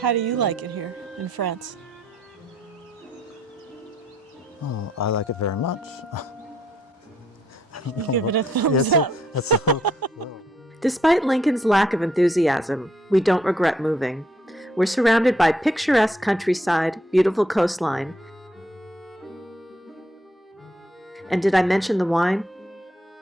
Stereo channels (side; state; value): both; normal; correlation 0.72